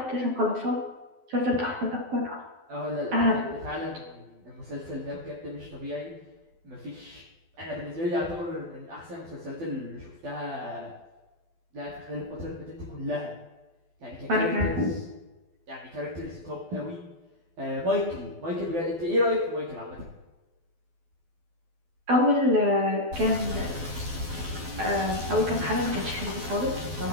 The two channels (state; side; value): late; left; 12 ms